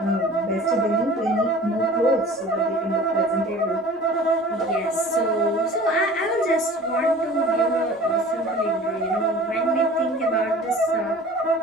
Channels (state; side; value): normal; both; correlation 0.44